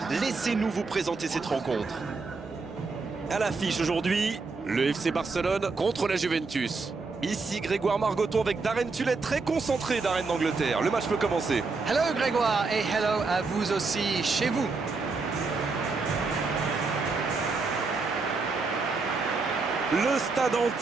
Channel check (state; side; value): quieter; left; 4.1 dB